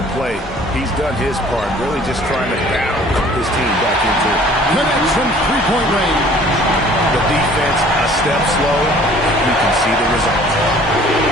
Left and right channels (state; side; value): normal; both; correlation 0.52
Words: play. He's done his part, really just trying to battle his team back into it. Connects from three-point range. The defense a step slow. You can see the result.